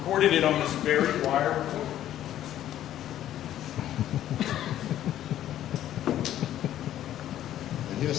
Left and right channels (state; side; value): quieter; right; 12.1 dB